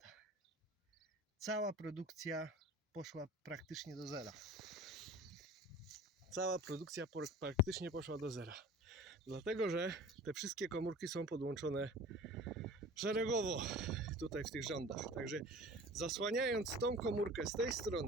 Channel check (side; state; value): both; normal; correlation 0.42